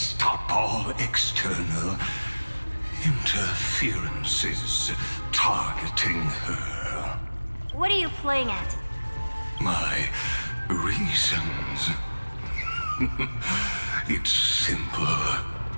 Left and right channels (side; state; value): both; inverted; correlation -1.00